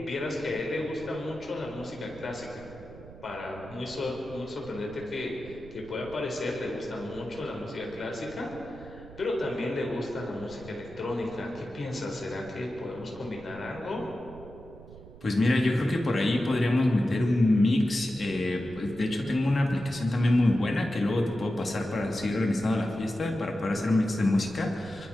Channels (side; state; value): right; noise; rumble, 17 dB below the sound